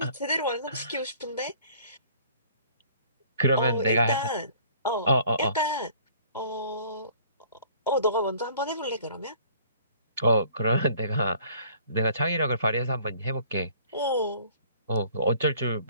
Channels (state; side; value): inverted; both; correlation -0.54